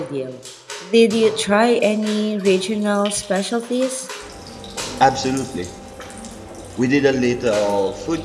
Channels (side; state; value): both; identical; correlation 1.00